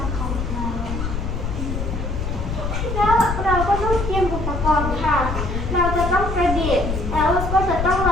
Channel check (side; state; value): left; noise; rumble, 3 dB below the sound